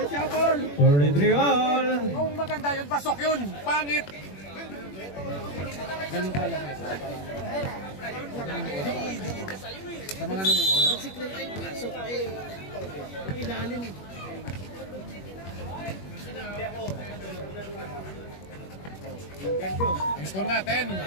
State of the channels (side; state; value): right; late; 21 ms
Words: all. Kung maganda yun, pasok yun. Pangit. Ganun ka lang eh. Sa mga nanonood. Ang score natin,